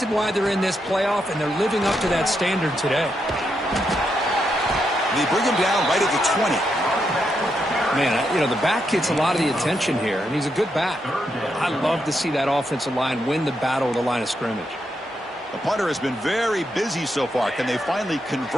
why they're in this playoff, and they're living up to that standard today. They bring him down right at the 20. Man, you know, the back gets a lot of the attention here, and he's a good back. I love to see that offensive line win the battle of the line of scrimmage. The punter has been very busy so far. Can they finally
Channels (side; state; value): both; normal; correlation 0.82